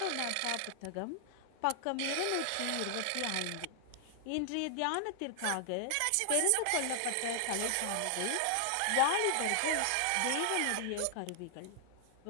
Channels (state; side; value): different; both; correlation 0.00